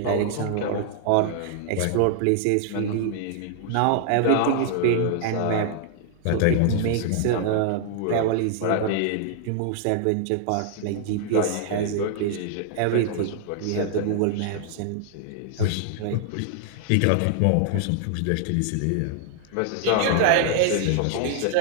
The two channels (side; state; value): both; different; correlation -0.01